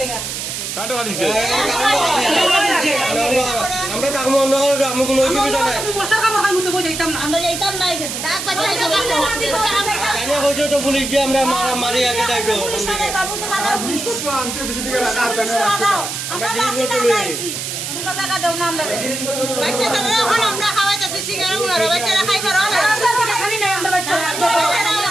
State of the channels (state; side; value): noise; right; hiss, 5 dB below the sound